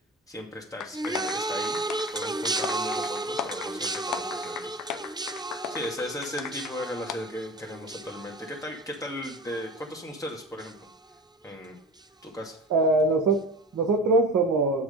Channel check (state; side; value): normal; both; correlation 0.34